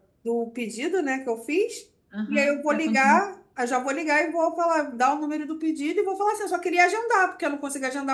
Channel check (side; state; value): both; identical; correlation 1.00